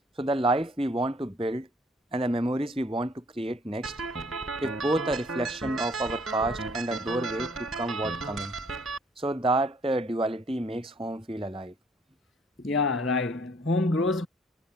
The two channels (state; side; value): normal; both; correlation 0.61